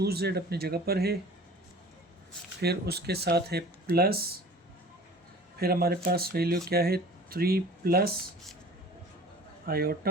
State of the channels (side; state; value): both; normal; correlation 0.44